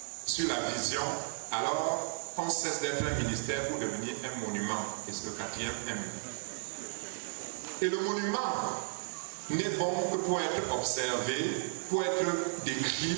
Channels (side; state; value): left; silent; 55 dB below the other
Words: sur la vision, alors on cesse d'être un ministère pour devenir un monument. Et c'est le 4e M. Et le monument n'est bon que pour être observé, pour être décrit